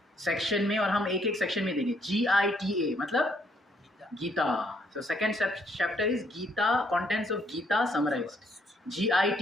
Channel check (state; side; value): normal; both; correlation 0.69